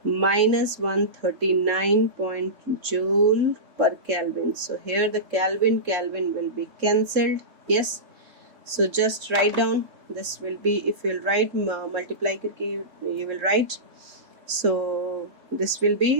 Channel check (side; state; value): left; late; 3.7 ms